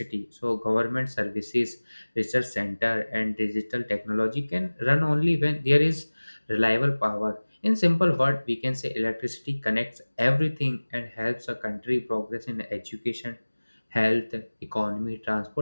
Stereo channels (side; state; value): both; inverted; correlation -1.00